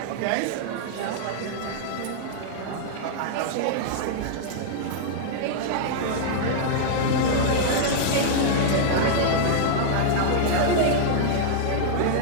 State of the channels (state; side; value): different; both; correlation -0.01